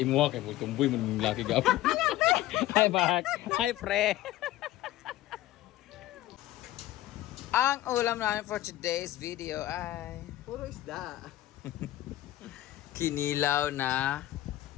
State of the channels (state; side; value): quieter; right; 15.2 dB